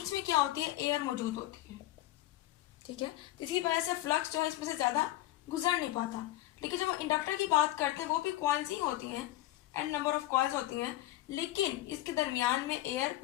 में क्या होती है, एयर मौजूद होती है, ठीक है। इसी वजह से फ्लक्स जो है इसमें से ज्यादा गुजर नहीं पाता। लेकिन जब हम इंडक्टर की बात करते हैं वो भी कॉइल्स ही होती हैं, एन नंबर ऑफ कॉइल्स होती हैं, लेकिन इसके दरमियान में एयर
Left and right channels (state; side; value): quieter; right; 15.8 dB